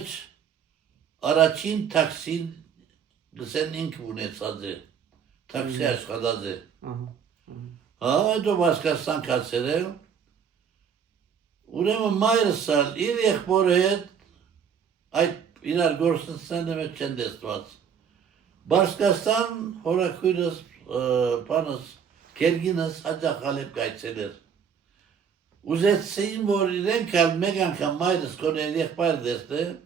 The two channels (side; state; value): left; quieter; 7.3 dB